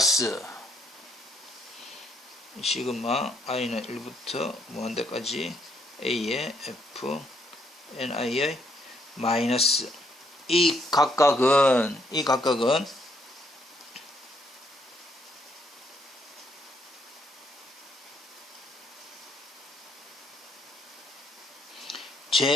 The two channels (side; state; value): both; normal; correlation 0.71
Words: 시그마 i는 1부터 무한대까지 a의 fni의 마이너스 이 각각은